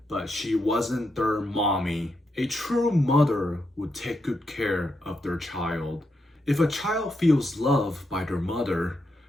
but she wasn't their mommy. A true mother would take good care of their child. If a child feels loved by their mother,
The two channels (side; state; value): both; normal; correlation 0.83